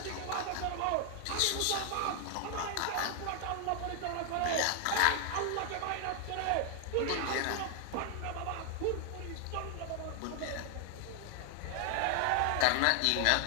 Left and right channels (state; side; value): different; both; correlation 0.00